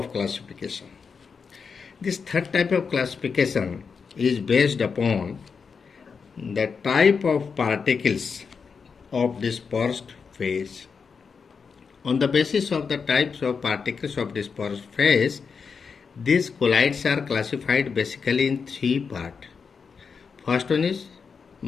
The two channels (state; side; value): quieter; right; 5.6 dB